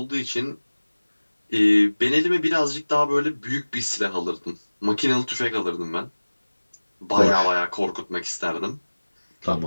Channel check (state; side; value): inverted; both; correlation -1.00